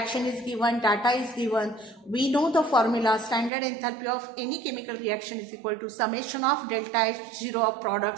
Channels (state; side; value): drops out; left; at 3.5 s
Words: is given, data is given. We know the formula. Standard enthalpy of any chemical reaction is equal to summation of delta H0 of